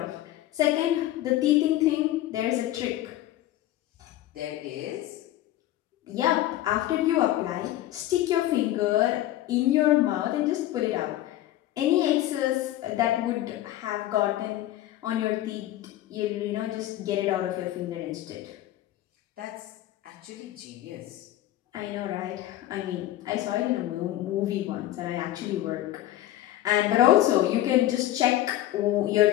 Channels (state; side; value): quieter; right; 14.3 dB